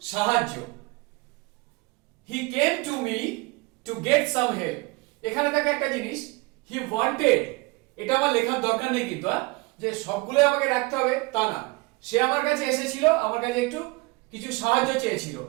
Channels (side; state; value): left; quieter; 25.3 dB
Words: সাহায্য। he came to me to get some help, এখানে দেখো একটা জিনিস, he wanted, এটা আমার লেখার দরকার নেই কিন্তু যে সবগুলো আমাকে রাখতে হবে তা না, সে আমার কাছে এসেছিল, আমার কাছে একটু কিছু সাহায্য চেয়েছিল,